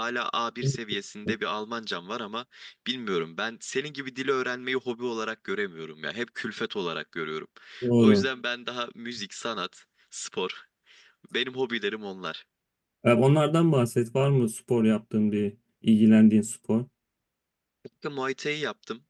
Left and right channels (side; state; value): both; identical; correlation 1.00